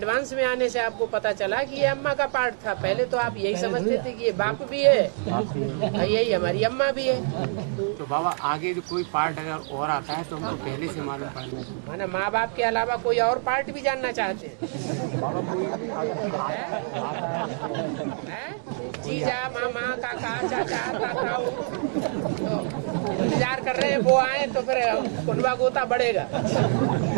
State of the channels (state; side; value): silent; left; 61 dB below the other